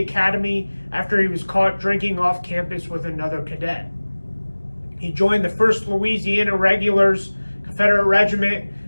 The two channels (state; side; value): inverted; both; correlation -1.00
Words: after he was caught drinking off campus with another cadet. He joined the 1st Louisiana Regulars Confederate Regiment